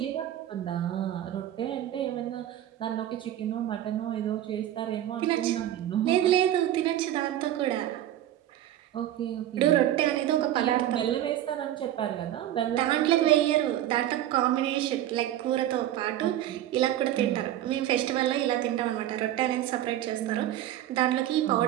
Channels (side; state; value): left; quieter; 12.5 dB